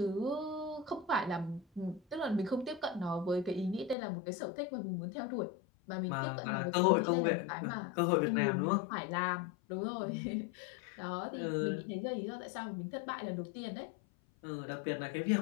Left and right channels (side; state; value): right; drops out; at 4.0 s